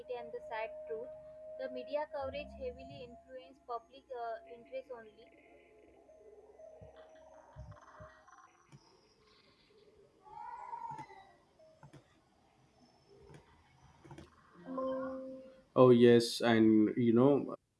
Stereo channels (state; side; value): identical; both; correlation 1.00